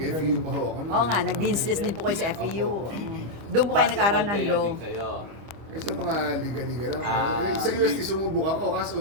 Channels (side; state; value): left; late; 25 ms